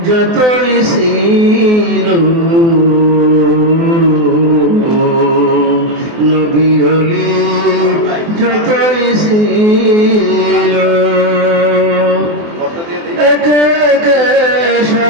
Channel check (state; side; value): late; left; 24 ms